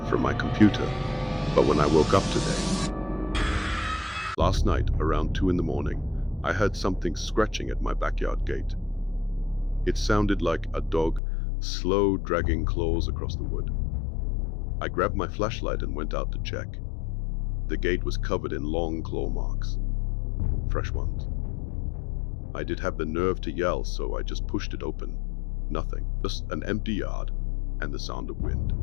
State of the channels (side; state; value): right; drops out; at 11.2 s